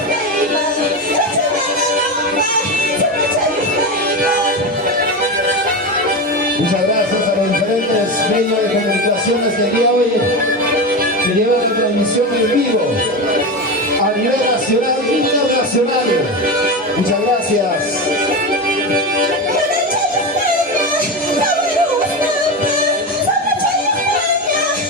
Muchas gracias a los diferentes medios de comunicaciones que el día de hoy que llevan la transmisión en vivo a nivel nacional e internacional. Muchas gracias.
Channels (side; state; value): both; normal; correlation 0.19